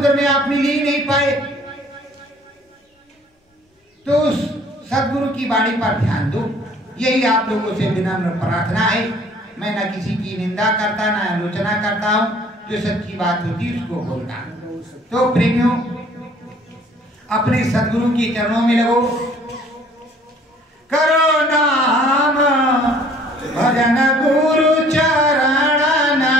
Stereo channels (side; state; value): both; normal; correlation 0.56